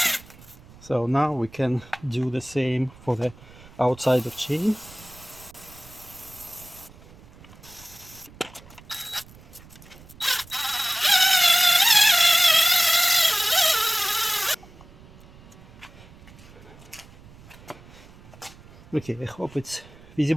So now we can do the same for the outside of chain. Okay, I hope it's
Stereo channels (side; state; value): right; noise; rumble, 22 dB below the sound